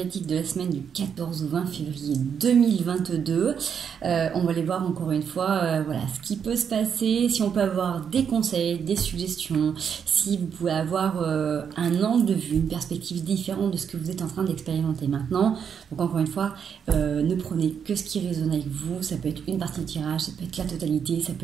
de la semaine du 14 au 20 février 2022. On va aller voir encore une fois voilà, ce qui peut se passer, si on peut avoir des conseils, des suggestions, si vous pouvez avoir un angle de vue, une perspective différente de ce que vous êtes en train d'expérimenter maintenant. Donc encore une fois, ne prenez que ce qui résonne avec vous. Ça peut être une partie du tirage, ça peut être la totalité, ça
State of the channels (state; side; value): quieter; left; 7.4 dB